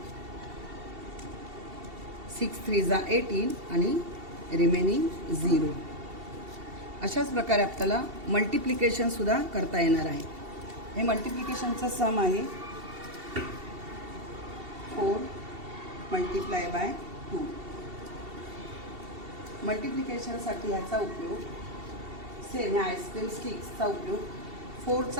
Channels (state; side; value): late; left; 2.7 ms